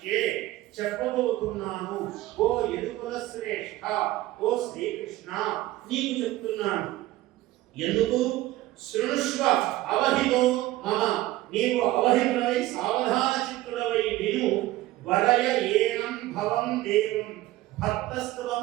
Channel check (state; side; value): quieter; left; 16.6 dB